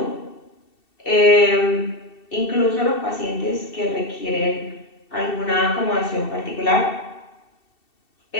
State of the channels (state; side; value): late; right; 2.7 ms